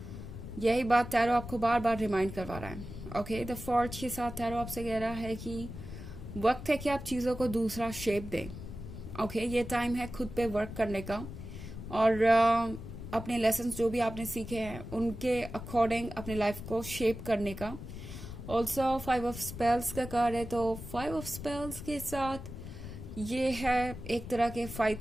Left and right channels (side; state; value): left; noise; rumble, 10 dB below the sound